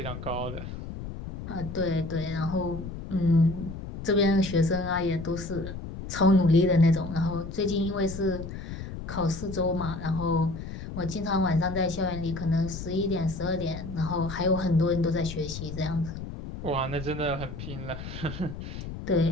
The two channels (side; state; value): left; noise; rumble, 9 dB below the sound